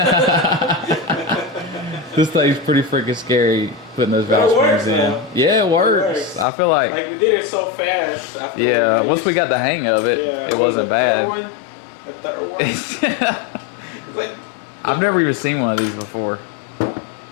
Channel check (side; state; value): right; drops out; at 6.5 s